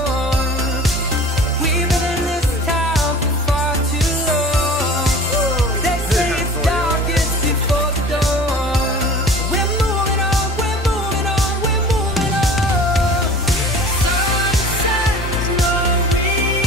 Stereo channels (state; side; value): normal; both; correlation 0.42